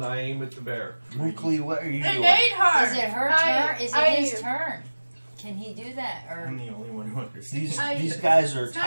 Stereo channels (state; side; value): inverted; both; correlation -1.00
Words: I aim at the bear. Mukli, what are you It doing? ate her! Is it her I- turn? Is I- it his turn? Can he do that? I'm Or the only one who understands. These guys are It's not